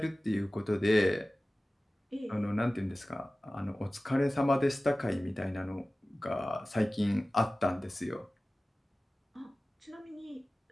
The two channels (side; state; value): both; normal; correlation 0.97